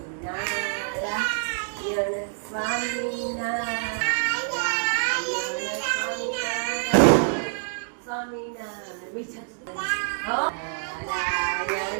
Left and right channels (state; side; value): silent; left; digital silence